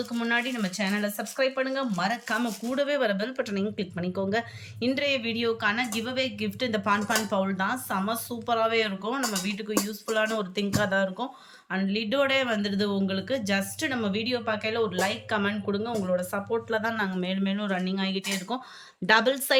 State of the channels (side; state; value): both; identical; correlation 1.00